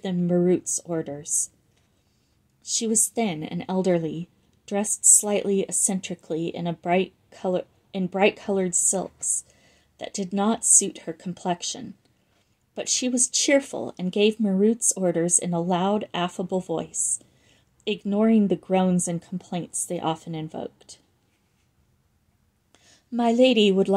them Marut's orders. She was thin and elderly, dressed slightly eccentrically in bright-colored silks that did not suit her complexion. But she was cheerful and gave Marut's orders in a loud, affable voice, ignoring the groans and complaints they often invoked. "My lady would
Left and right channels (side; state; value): both; identical; correlation 1.00